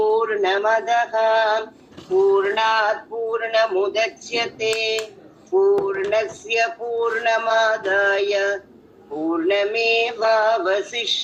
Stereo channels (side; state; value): both; identical; correlation 1.00